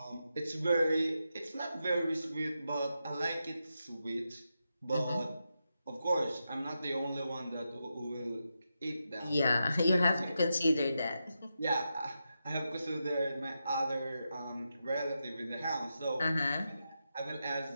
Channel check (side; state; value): both; inverted; correlation -0.87